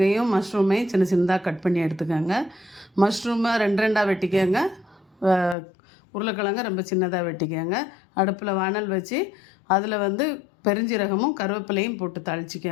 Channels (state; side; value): drops out; right; at 5.6 s